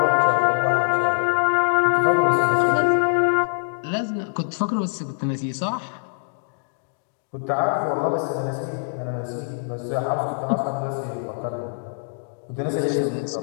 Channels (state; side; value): silent; right; digital silence